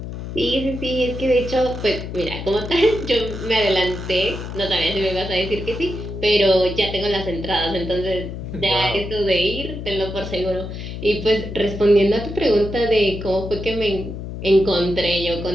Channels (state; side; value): noise; left; hum, 8 dB below the sound